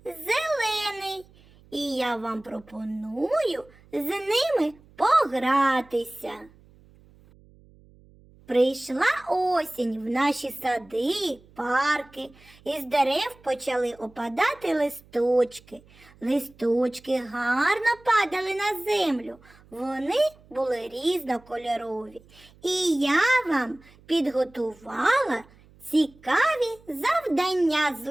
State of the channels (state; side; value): noise; right; hum, 27 dB below the sound